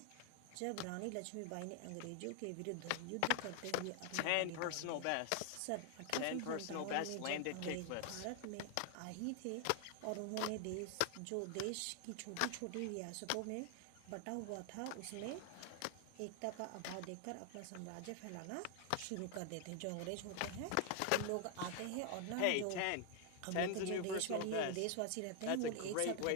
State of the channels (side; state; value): both; different; correlation 0.00